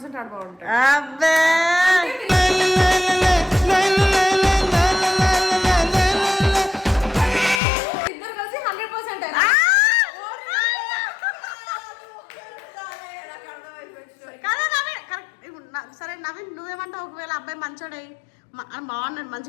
ఆడ బాగుంటా అబ్బే ఇద్దరు కలిసి 100% సరే నవీన్ నువ్వేమంటావు ఒకవేళ అబ్బాయి మంచోడై బాగున్నాడు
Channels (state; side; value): drops out; right; at 7.6 s